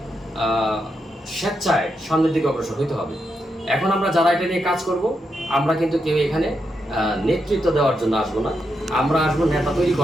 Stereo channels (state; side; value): normal; both; correlation 0.84